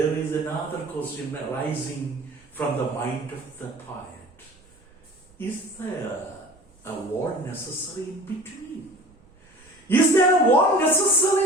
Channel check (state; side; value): noise; right; rumble, 30 dB below the sound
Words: is another question arising from the mind of the poet. Is there a wall necessary in between? Is there a wall